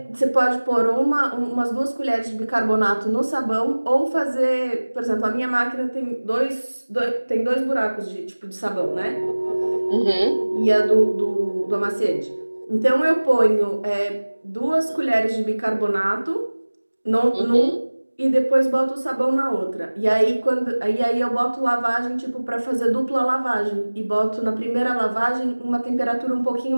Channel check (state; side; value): inverted; both; correlation -1.00